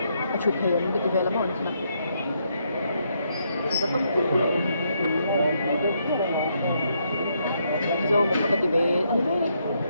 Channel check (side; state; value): both; inverted; correlation -0.76